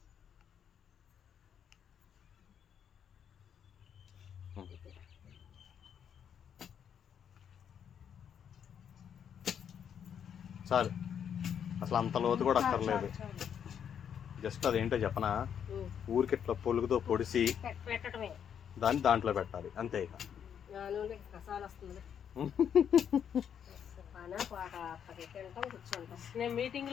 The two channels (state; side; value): quieter; right; 8.4 dB